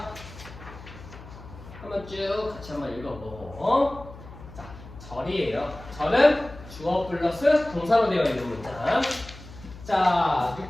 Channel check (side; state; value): left; noise; hum, 16 dB below the sound